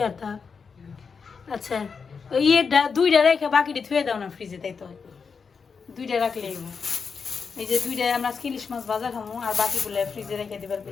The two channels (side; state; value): right; quieter; 5.6 dB